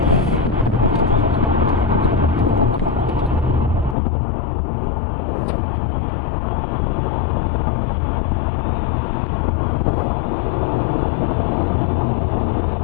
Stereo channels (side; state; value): right; drops out; at 4.0 s